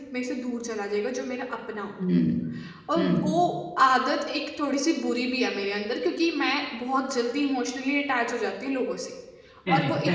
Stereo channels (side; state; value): both; identical; correlation 1.00